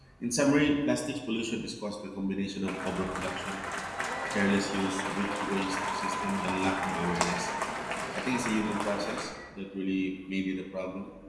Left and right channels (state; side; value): identical; both; correlation 1.00